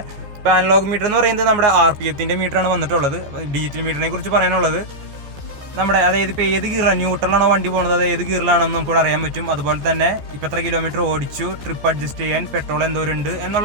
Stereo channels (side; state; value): left; late; 14 ms